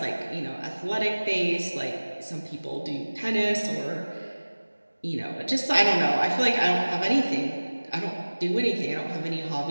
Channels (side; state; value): both; inverted; correlation -1.00